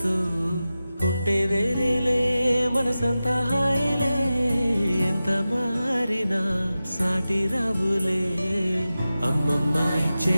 ఉంటే వేరేలే మనసంతా హాయిలే ఎంత మారినా సాటి రావులే అమ్మమ్మ ఇచ్చే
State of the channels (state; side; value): inverted; both; correlation -0.94